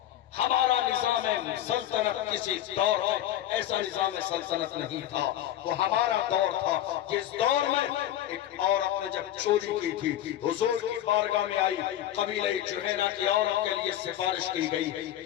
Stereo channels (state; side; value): quieter; right; 12.3 dB